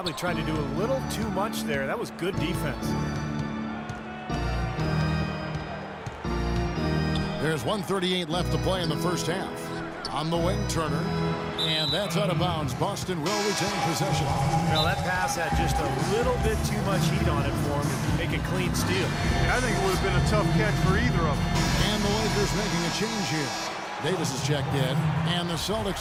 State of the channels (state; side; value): identical; both; correlation 1.00